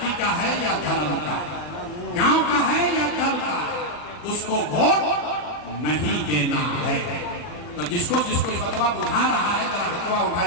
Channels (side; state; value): right; late; 40 ms